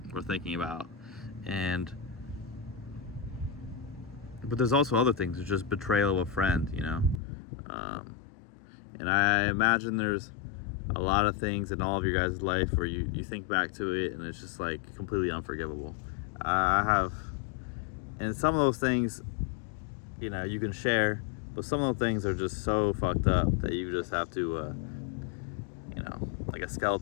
we're thinking about, but there's also other things. It's just betrayal of a friend, and I imagine there's a lot of things in all of your guys' life where you think back to it and it's just like completely unforgivable. I have, and some of those things, you can share, but some of those things are just so fucked up that you just have to, like a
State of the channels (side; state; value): right; drops out; at 7.2 s